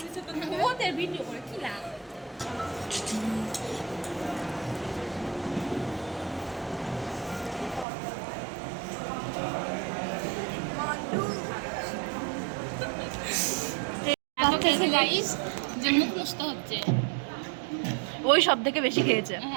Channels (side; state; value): left; drops out; at 7.9 s